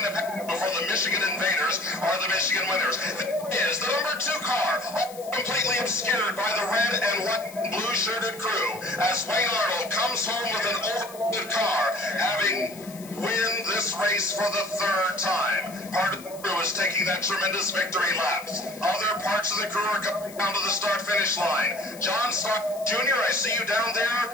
to pass before the Michigan Invaders are the Michigan winners. This is the number 2 car, completely obscured by the red and white and blue-shirted crew, as Wayne Arnold comes home with an overloaded car, having win this race for the 3rd time. Part of the crew is taking that tremendous victory lap. Other parts of the crew are coming down to the start-finish line. John Stark Jr., I see you down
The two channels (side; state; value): left; noise; hiss, 18 dB below the sound